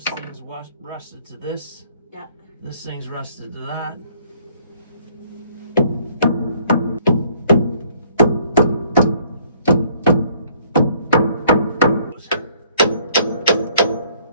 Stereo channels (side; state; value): both; inverted; correlation -0.61